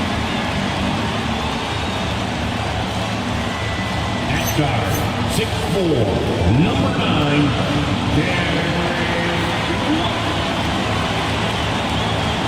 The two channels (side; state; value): both; identical; correlation 1.00